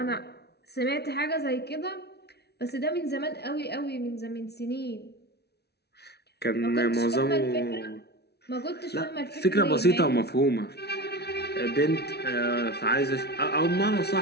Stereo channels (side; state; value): right; late; 0.48 ms